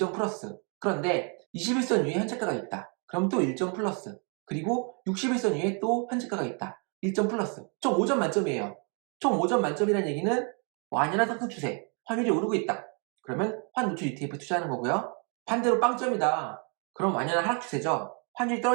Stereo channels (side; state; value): left; quieter; 37.3 dB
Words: 플러스. 그런데 21선 위에 현재가가 있다. 그럼 또 1점 플러스. 그리고 61선 위에 또 현재가가 있다. 1점 플러스. 총 5점 만점이에요. 총 5점 만점이라는 얘기는 완연한 상승 추세, 환율이 오르고 있다. 그러면 환 노출 ETF 투자하는 거고요. 반대로 빵점이다. 그럼 완연한 하락 추세죠. 환율이